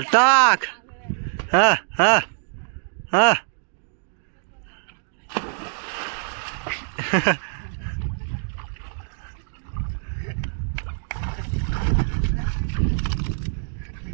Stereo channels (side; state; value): left; silent; digital silence